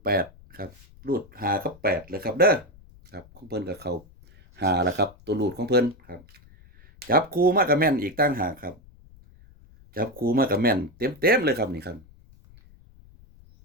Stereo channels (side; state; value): left; noise; rumble, 25 dB below the sound